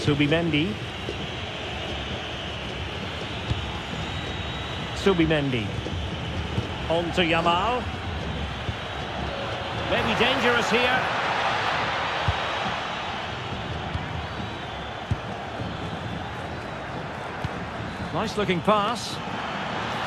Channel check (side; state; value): both; identical; correlation 1.00